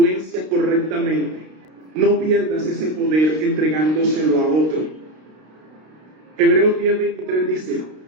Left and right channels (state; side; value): late; left; 32 ms